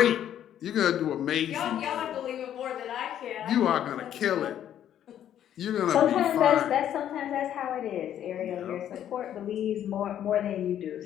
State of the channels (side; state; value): right; quieter; 10.6 dB